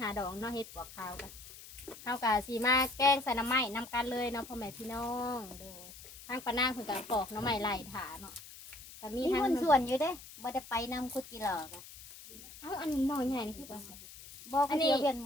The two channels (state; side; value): noise; left; hiss, 16 dB below the sound